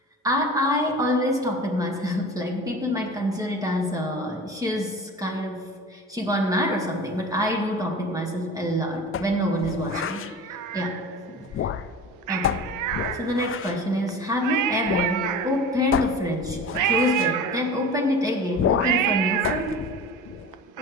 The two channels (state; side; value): normal; both; correlation 0.36